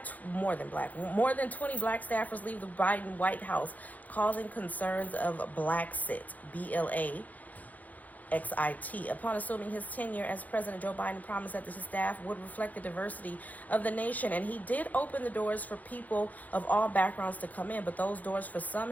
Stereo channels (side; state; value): right; late; 0.079 ms